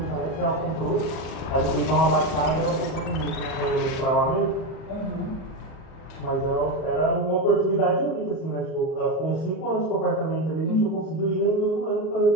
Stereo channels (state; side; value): late; right; 38 ms